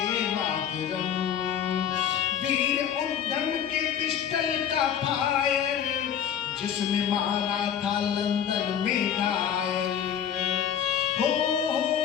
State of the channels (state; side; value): quieter; right; 9.1 dB